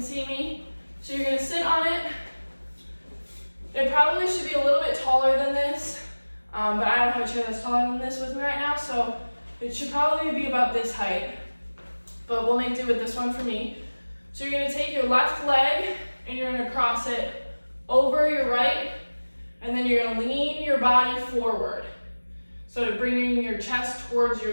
see me. So you're gonna sit on it. It probably should be a little bit taller than this. but I don't have a chair that's taller than this with me right now, so it should probably be about this height, but we'll make do with this one for me. So you're gonna take your left leg and you're gonna cross it over your right, and then you're gonna lean your body forward. So bringing your chest towards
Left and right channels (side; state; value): both; inverted; correlation -1.00